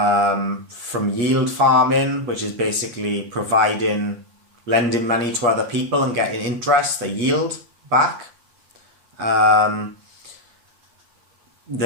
yield farming, which is basically lending money to other people and getting interest, a yield back.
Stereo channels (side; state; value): left; late; 8.5 ms